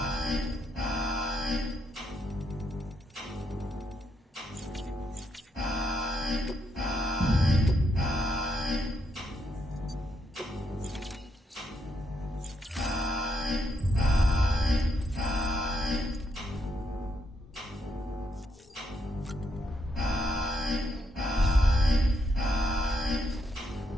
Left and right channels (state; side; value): normal; both; correlation 0.78